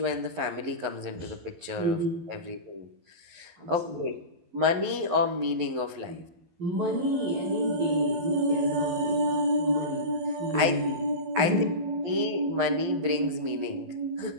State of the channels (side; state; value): left; late; 11 ms